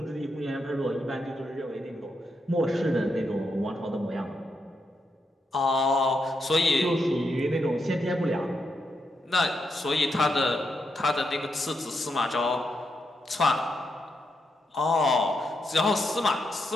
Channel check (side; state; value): both; normal; correlation 0.82